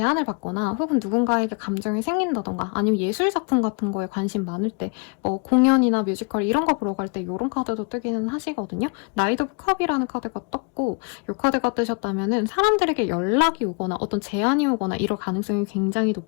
받거나 혹은 누군가에게 감정이 생긴다던가 아니면 예술작품 같은 거에 관심 많을 때 뭐 공연이나 뮤지컬 이런 거 보러 갈 때 이런 카드도 뜨기는 하시거든요. 나이트 오브 컵이라는 카드가 떴고 이 카드가 뜨셨다면은 사람들에게 연락이 오거나 어떤 제안이 오거나 이럴 가능성이 굉장히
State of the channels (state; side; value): quieter; right; 33.6 dB